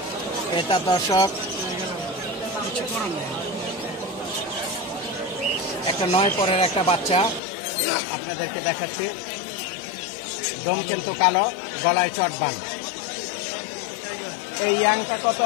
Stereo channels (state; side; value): drops out; right; at 7.4 s